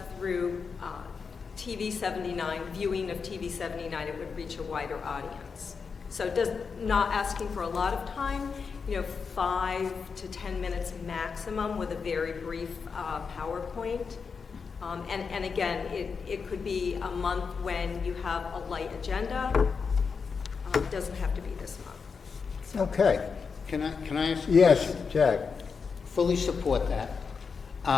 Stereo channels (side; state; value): right; quieter; 5.5 dB